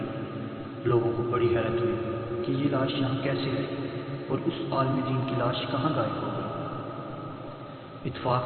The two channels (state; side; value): identical; both; correlation 1.00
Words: لوگوں کو بڑی حیرت ہوئی کہ یہ لاش یہاں کیسے ہے اور اس عالم دین کی لاش کہاں غائب ہو گئی۔ اتفاق